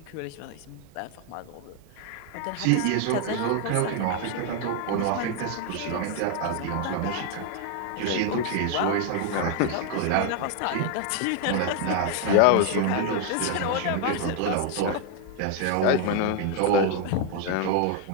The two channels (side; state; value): both; different; correlation 0.00